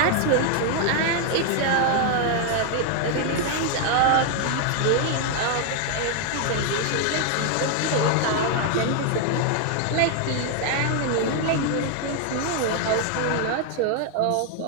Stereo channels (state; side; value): different; both; correlation 0.00